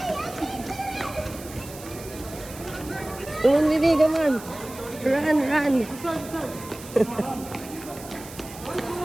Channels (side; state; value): right; noise; hiss, 16 dB below the sound